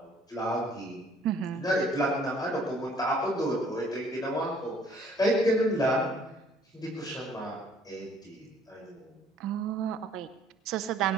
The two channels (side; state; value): both; normal; correlation 0.59